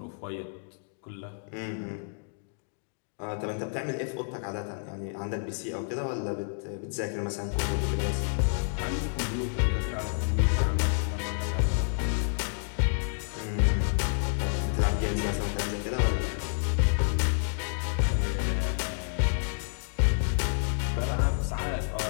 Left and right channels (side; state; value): right; silent; digital silence